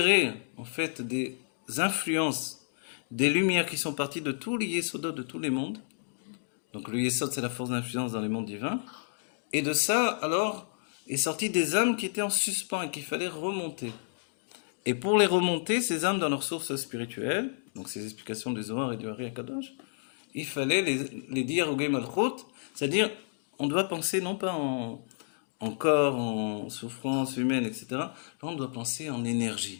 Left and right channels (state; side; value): silent; right; digital silence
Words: en fait des influences, des lumières qui sont parties de tous les Yesodot de tous les mondes. Donc le Yesod, c'est la force d'influence dans les mondes divins. Et de ça, alors, est sorti des âmes qui étaient en suspens et qu'il fallait remonter. Et pour les remonter, ces âmes dans leur source spirituelle, donc ces explications du Zohar et du Hari HaKadosh, il fallait les dire au Gay Malchut, c'est-à-dire, on doit penser non pas en corps, en souffrance humaine, etc. Là, on doit penser en énergie